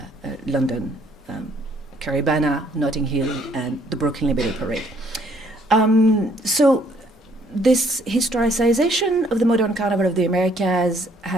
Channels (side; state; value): both; normal; correlation 0.64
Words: London, Caribana, Notting Hill, and the Brooklyn Liberty Parade. So this historicization of the modern Carnival of the Americas